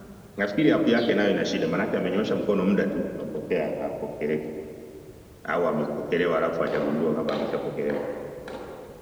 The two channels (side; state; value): both; identical; correlation 1.00